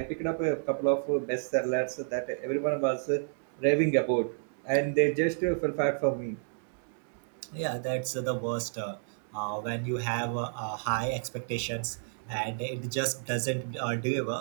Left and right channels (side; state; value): left; silent; digital silence